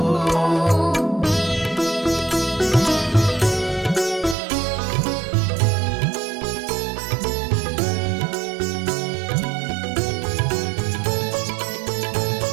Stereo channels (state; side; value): drops out; left; at 4.4 s